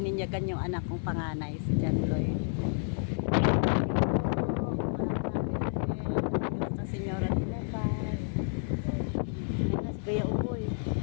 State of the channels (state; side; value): silent; right; digital silence